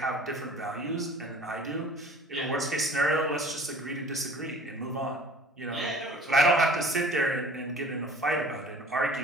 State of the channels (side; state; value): both; normal; correlation 0.47